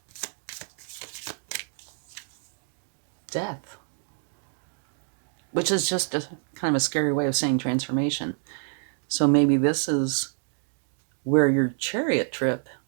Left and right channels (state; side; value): silent; left; 60 dB below the other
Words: Death, which is just a kind of a scary way of saying transformation. So maybe this is where your Chariot trip